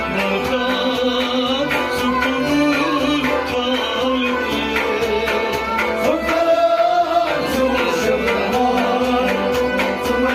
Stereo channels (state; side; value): identical; both; correlation 1.00